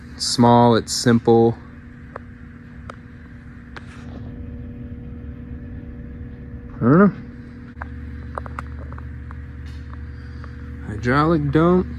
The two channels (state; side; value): identical; both; correlation 1.00